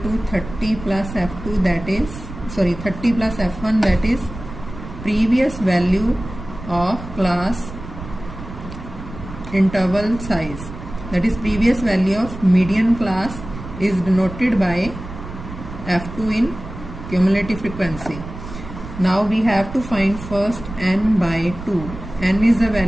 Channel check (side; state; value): right; noise; rumble, 12 dB below the sound